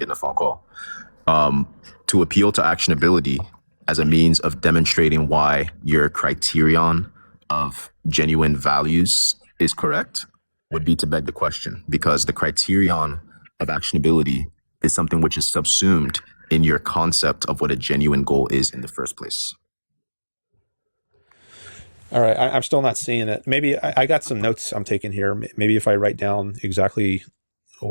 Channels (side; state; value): both; inverted; correlation -1.00